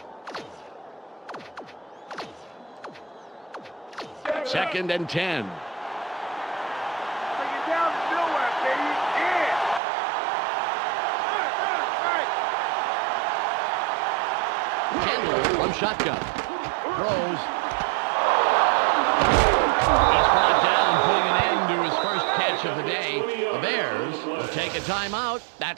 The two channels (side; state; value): left; drops out; at 9.8 s